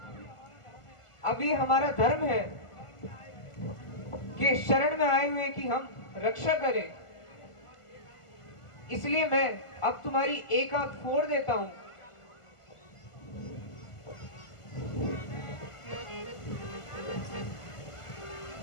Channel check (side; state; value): right; late; 1.4 ms